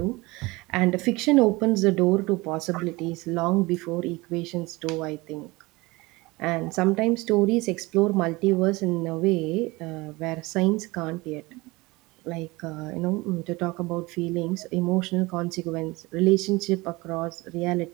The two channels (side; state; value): left; quieter; 22.7 dB